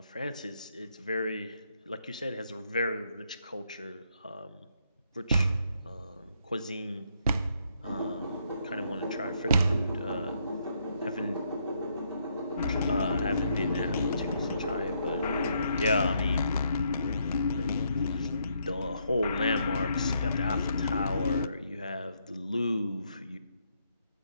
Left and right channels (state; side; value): inverted; both; correlation -0.74